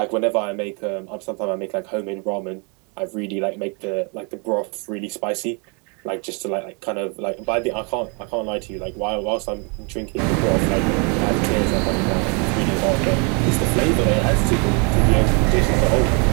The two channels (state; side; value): quieter; left; 34.6 dB